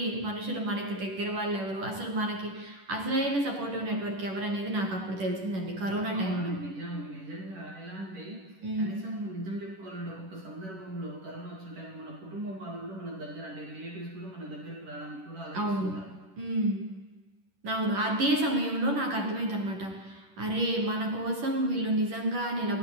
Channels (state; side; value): late; left; 11 ms